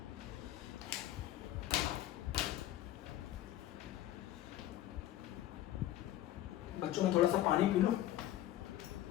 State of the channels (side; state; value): right; quieter; 13.5 dB